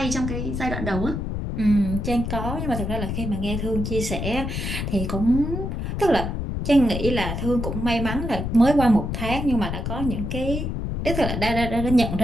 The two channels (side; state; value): left; noise; rumble, 3 dB below the sound